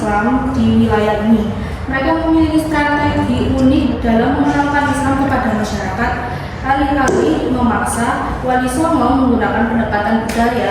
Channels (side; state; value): both; identical; correlation 1.00